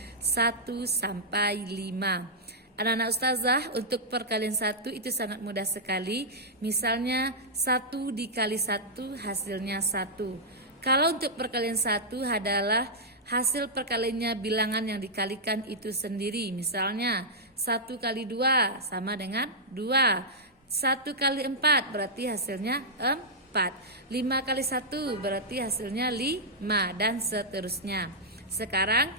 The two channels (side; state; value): both; normal; correlation -0.09